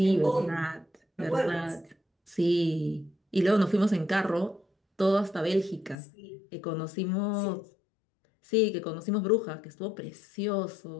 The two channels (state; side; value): drops out; right; at 6.0 s